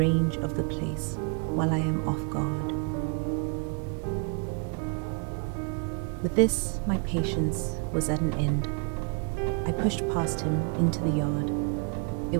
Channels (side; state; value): left; quieter; 37.6 dB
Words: of the place while I am off guard." With this, my patience was at an end. I pushed past him into the yard. It